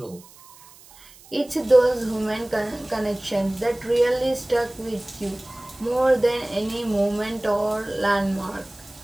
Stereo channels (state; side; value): noise; right; hiss, 23 dB below the sound